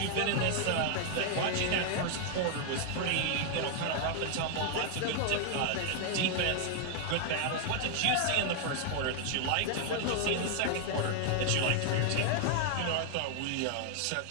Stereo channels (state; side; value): different; both; correlation 0.00